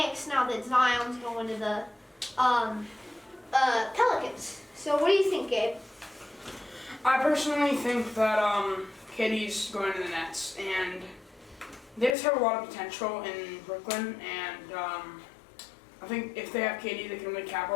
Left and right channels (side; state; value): right; drops out; at 12.2 s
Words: now that Zion's going to the Pelicans. So what do you think, Gabe? I personally think that KD's going to the Nets, and they just have a lot of potential in Brooklyn, and I think if they have KD, they can really